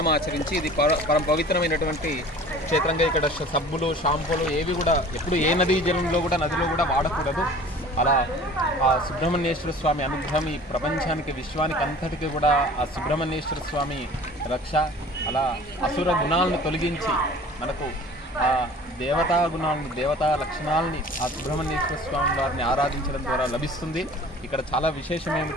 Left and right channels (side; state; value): both; normal; correlation 0.45